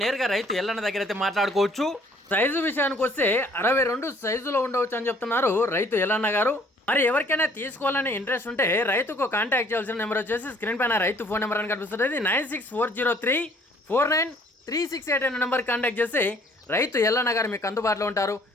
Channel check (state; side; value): normal; both; correlation 0.59